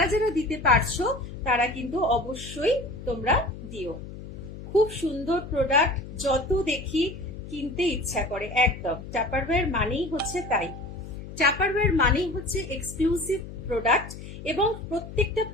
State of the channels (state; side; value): noise; left; hum, 12 dB below the sound